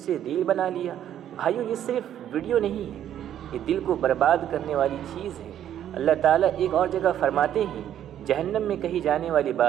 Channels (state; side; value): quieter; left; 10.7 dB